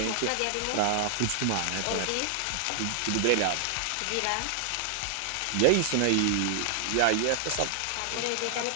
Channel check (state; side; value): different; both; correlation 0.00